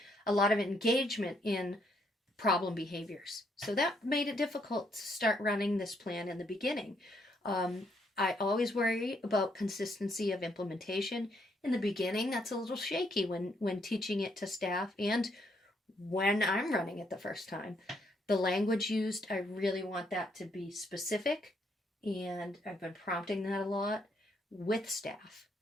in problem behaviors. So that made it difficult to start running this plan in the beginning. I always worry about consistency of implementation. In the beginning, that's a little shaky when teaching it to staff and when I'm running it the first time. The language used, I really want that to be specific, and I've been prompting that a lot with staff.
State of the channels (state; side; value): normal; both; correlation 0.73